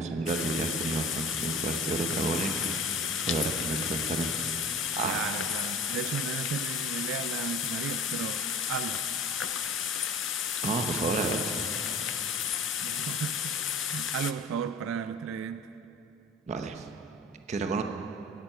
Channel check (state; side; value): normal; both; correlation 0.41